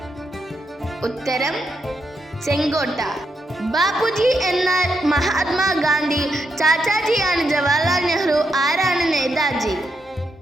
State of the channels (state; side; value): normal; both; correlation 0.82